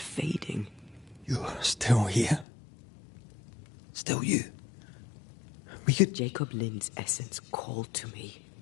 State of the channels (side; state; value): right; drops out; at 2.5 s